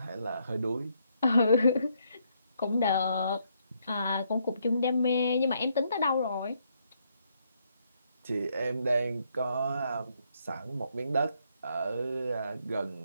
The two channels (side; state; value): both; inverted; correlation -0.74